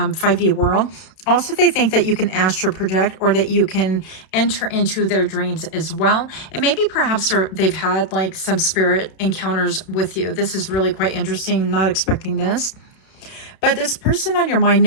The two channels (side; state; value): right; late; 32 ms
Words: world. Also, they think that you can astral project, or that you can enter into their dreams as well. And maybe perhaps they've had like some spirit encounters with you. This is really quite interesting. Not expecting this. But this person on your mind